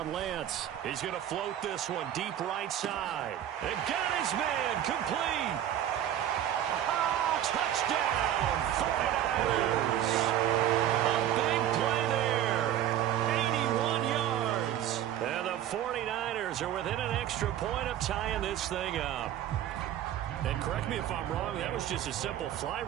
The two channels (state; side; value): quieter; left; 11.3 dB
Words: Lance. He's going to float this one deep right side. And got his man complete. Touchdown, 49ers. A big play there. 81 yards. And the 49ers are within an extra point of tying this thing up. And correct me if I'm wrong, that was just a simple fly